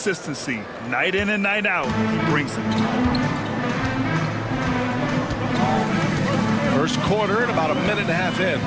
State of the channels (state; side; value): identical; both; correlation 1.00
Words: Night in and night out, he brings it. First quarter and about a minute and a half in.